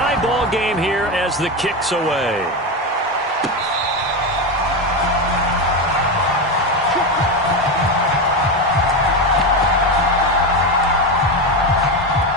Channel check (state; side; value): normal; both; correlation 0.15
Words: ball game here as the kick's away.